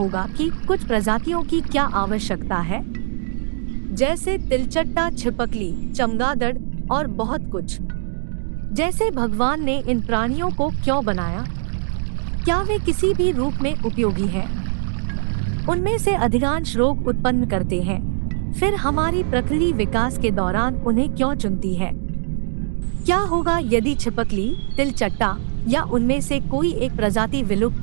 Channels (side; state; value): left; silent; digital silence